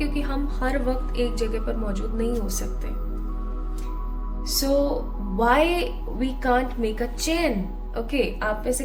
हम हर वक्त एक जगह पर मौजूद नहीं हो सकते। So why we can't make a chain? Okay, आप में से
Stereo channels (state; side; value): identical; both; correlation 1.00